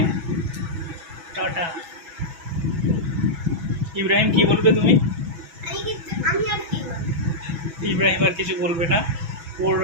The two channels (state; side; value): late; left; 6.1 ms